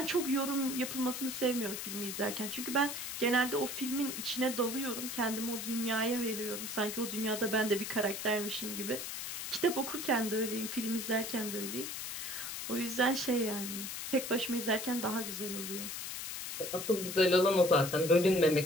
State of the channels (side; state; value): left; noise; hiss, 6 dB below the sound